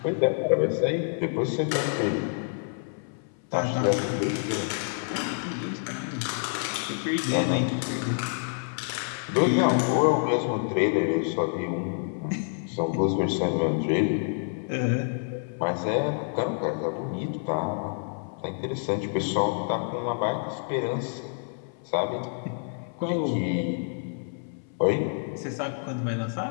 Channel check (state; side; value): silent; right; 60 dB below the other